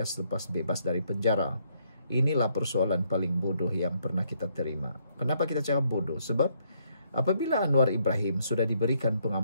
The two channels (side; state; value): both; inverted; correlation -0.71